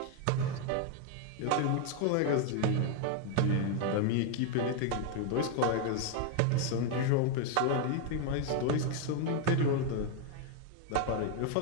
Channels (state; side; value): different; both; correlation 0.01